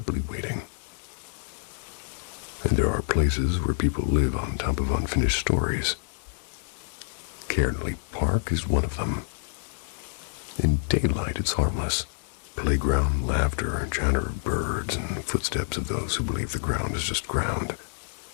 waiting. And there are places where people live on top of unfinished stories. Cairnley Park is one of them. In daylight, it's harmless. Playground, laughter, chatter of birds, and footsteps of those who believe the ground is just ground.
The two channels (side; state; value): right; silent; 60 dB below the other